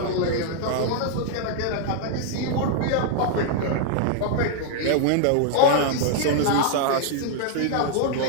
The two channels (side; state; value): both; different; correlation 0.00